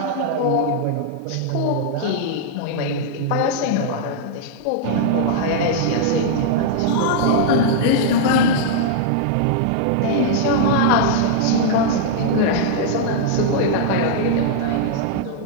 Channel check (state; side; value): different; both; correlation -0.01